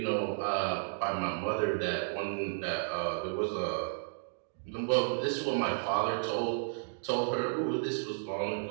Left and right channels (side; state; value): left; silent; digital silence